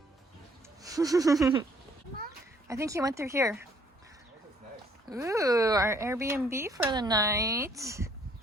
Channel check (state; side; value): normal; both; correlation 0.64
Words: I think he went through here. Ooh, our Airbnb for the night.